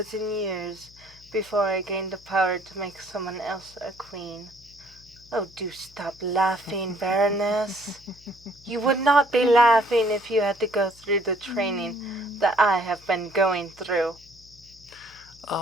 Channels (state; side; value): noise; left; hum, 25 dB below the sound